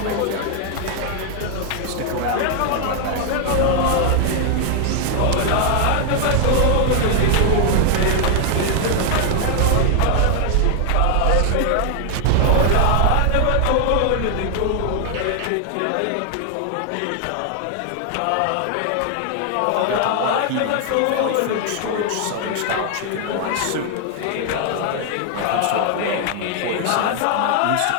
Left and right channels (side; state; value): both; different; correlation 0.00